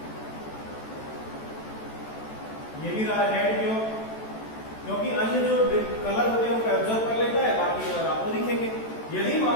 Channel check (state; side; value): late; right; 14 ms